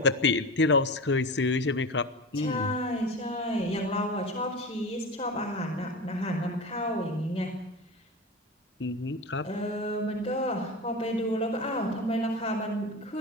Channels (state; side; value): normal; both; correlation 0.27